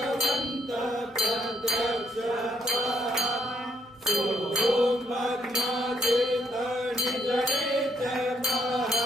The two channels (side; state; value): both; normal; correlation 0.72